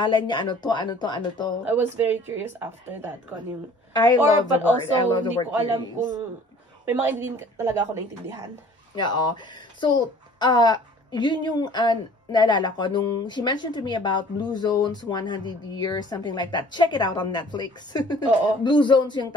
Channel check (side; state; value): both; normal; correlation 0.51